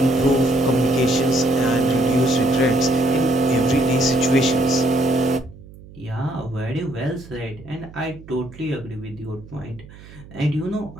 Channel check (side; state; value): right; noise; hum, 19 dB below the sound